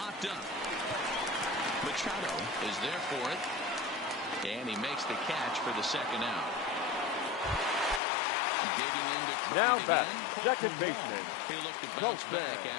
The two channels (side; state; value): right; drops out; at 8.0 s